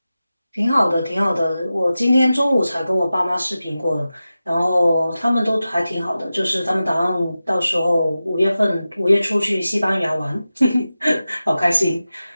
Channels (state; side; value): inverted; both; correlation -0.94